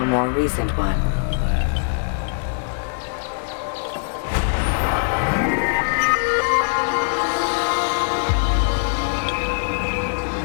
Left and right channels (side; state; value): right; silent; digital silence